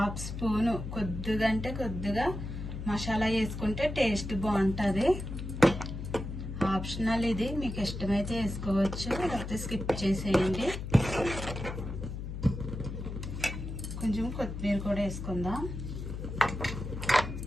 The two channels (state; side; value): noise; left; hum, 6 dB below the sound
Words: స్పూను కొద్దిగా మసాలా వేసుకుంటే టేస్ట్ బాగుంటుంది. ఆప్షనల్ ఇది, మీకు ఇష్టమైతే వేసుకోవచ్చు, లేకపోతే స్కిప్ చేసేయండి. కొంచెం కొత్తిమీర కూడా వేసుకుందాం.